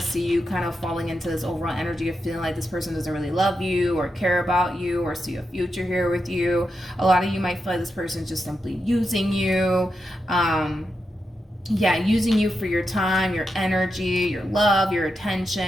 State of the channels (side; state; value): both; normal; correlation 0.86